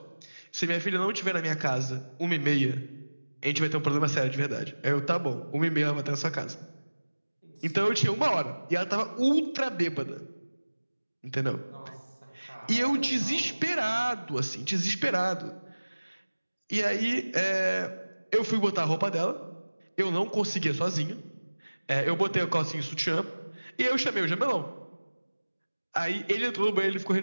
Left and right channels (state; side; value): inverted; both; correlation -1.00